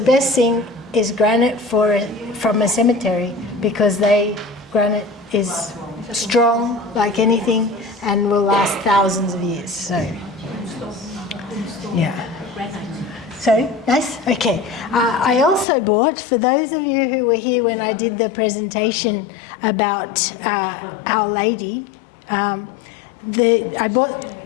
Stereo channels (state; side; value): drops out; right; at 15.7 s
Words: thing is granite from a cemetery, because granite is strong like anything and will last thousands of years. So yeah. So nice. Okay. I also bought, for those of you who were here when I did the presentation about Our Lady, I bought